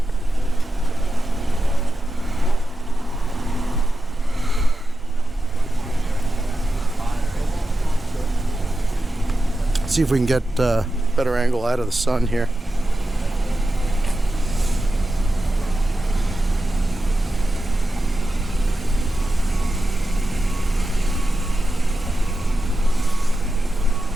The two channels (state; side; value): normal; both; correlation 0.91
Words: See if we can get a better angle out of the sun here.